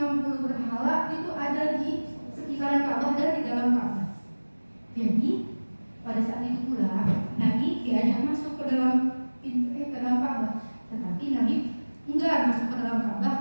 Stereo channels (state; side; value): inverted; both; correlation -1.00